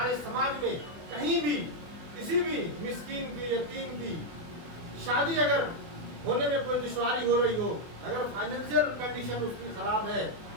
समाज में कहीं भी किसी भी मिस्कीन की, यतीम की शादी अगर होने में कोई दुश्वारी हो रही हो, अगर फाइनेंशियल कंडीशन उसकी खराब है,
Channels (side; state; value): left; late; 24 ms